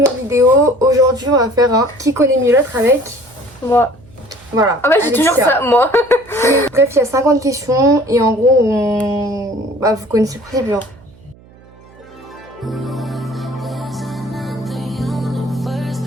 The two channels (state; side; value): noise; right; hum, 25 dB below the sound